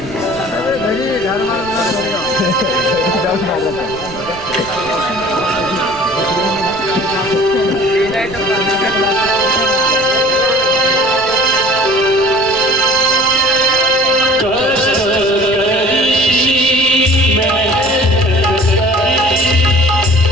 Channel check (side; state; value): right; noise; rumble, 17 dB below the sound